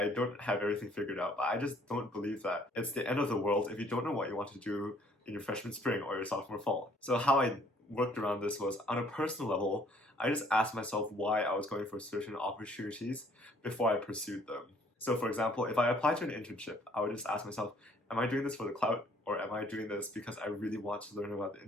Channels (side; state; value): both; normal; correlation 0.60